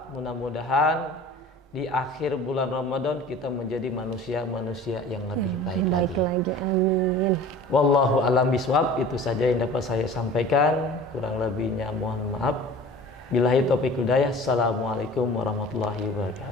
mudah-mudahan di akhir bulan Ramadan kita menjadi manusia-manusia yang lebih baik lagi. Amin. Wallahu a'lam bishawab. Itu saja yang dapat saya sampaikan. Kurang lebihnya mohon maaf. Billahi taufiq hidayah. Assalamualaikum warahmatullahi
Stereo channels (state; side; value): normal; both; correlation 0.42